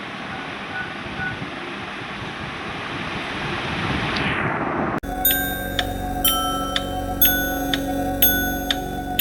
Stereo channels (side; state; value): both; identical; correlation 1.00